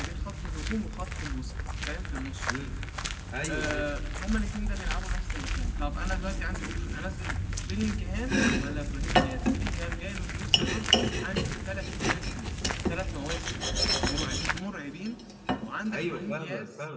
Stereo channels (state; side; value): identical; both; correlation 1.00